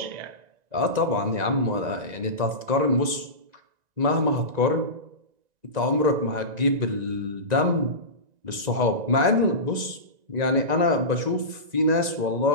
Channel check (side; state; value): left; late; 1.9 ms